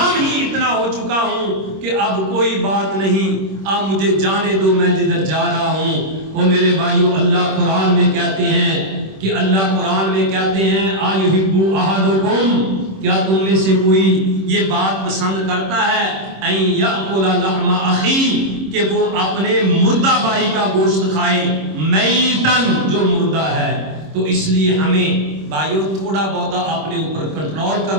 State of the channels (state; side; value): late; left; 26 ms